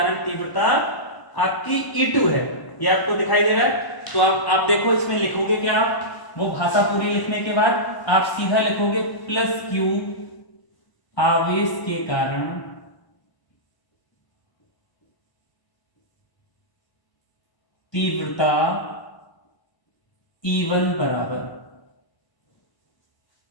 तीव्रता आपकी E2 है, ये आपको दिखाई दे रहा है। तो आप देखो इसमें लिखोगे क्या, आप वो भाषा पूरी लिखने के बाद आप सीधा लिखोगे प्लस क्यू आवेश के कारण तीव्रता E1 बराबर,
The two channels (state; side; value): late; right; 1.0 ms